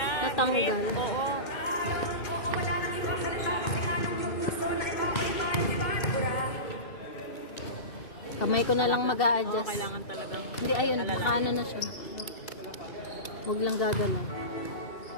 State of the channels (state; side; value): late; right; 2.7 ms